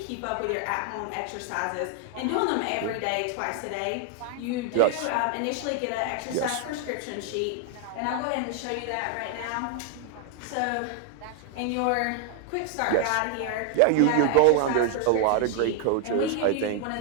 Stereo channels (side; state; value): both; different; correlation 0.00